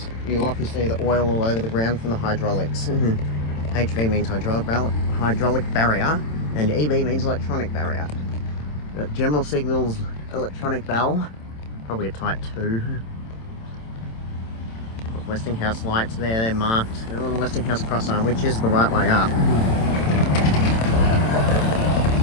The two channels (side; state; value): right; late; 27 ms